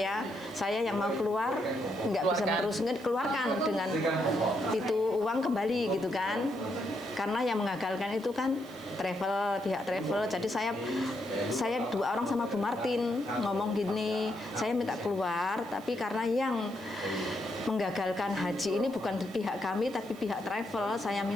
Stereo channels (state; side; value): noise; right; hiss, 24 dB below the sound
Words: Saya yang mau keluar nggak bisa meneruskan, keluarkan dengan itu uang kembali gitu kan. Karena yang mengagalkan itu kan pihak travel. Jadi saya 2 orang sama Bu Martin ngomong gini, saya minta keluar, tapi karena yang menggagalkan haji ini bukan pihak kami tapi pihak travel, saya